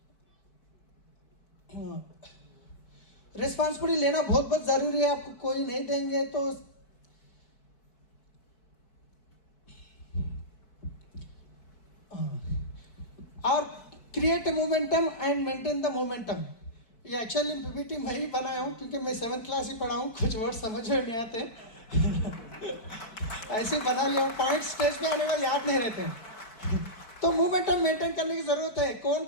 रिस्पॉन्सिबिलिटी लेना बहुत बहुत ज़रूरी है। आपको कोई नहीं देंगे तो और create momentum and maintain the momentum. ये एक्चुअली PPT मैं ही बनाया हूँ, क्योंकि मैं 7th क्लास ही पढ़ा हूँ, कुछ वर्ड समझ में नहीं आते। ऐसे बना लिया, पॉइंट स्टेज पे आने वाले याद नहीं रहते। तो मोमेंटम मेंटेन करने की ज़रूरत है। कौन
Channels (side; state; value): right; late; 4.6 ms